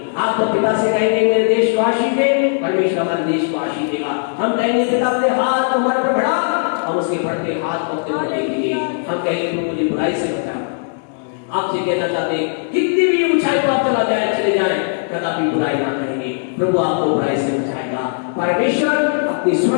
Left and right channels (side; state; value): right; silent; digital silence